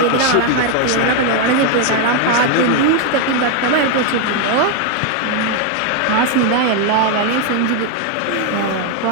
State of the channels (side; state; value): both; different; correlation 0.01